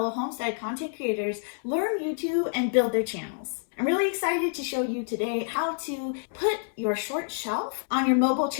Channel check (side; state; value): right; silent; 60 dB below the other